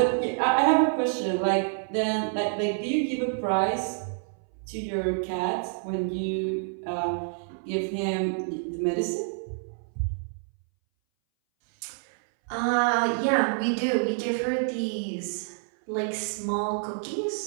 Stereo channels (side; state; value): left; silent; 60 dB below the other